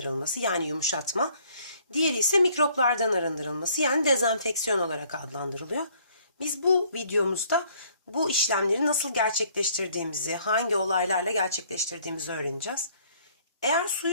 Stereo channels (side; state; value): both; inverted; correlation -0.61